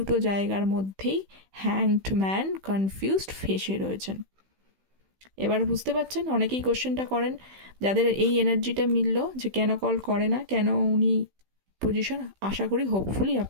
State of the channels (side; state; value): left; late; 16 ms